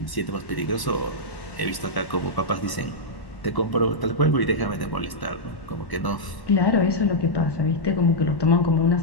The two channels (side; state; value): right; late; 1.0 ms